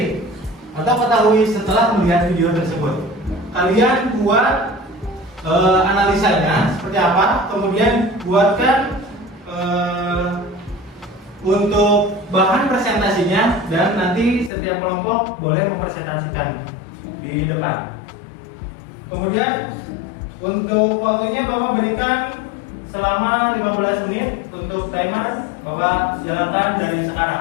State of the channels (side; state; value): right; drops out; at 14.5 s